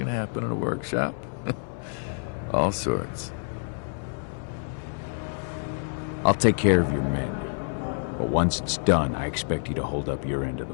happen in a workshop. All sorts. I'll take care of your men. But once it's done, I expect you to hold up your end of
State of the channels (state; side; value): silent; right; 60 dB below the other